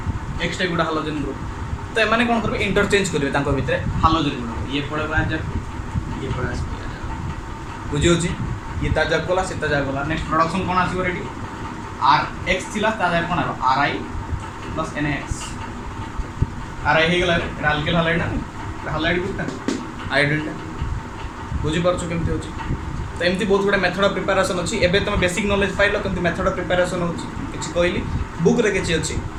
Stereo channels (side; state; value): both; identical; correlation 1.00